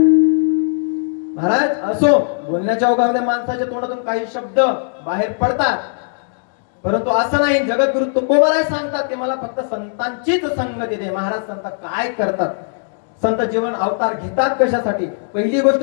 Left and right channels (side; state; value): right; silent; digital silence